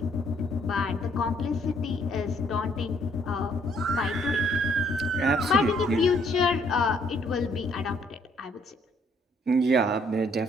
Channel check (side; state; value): both; normal; correlation 0.67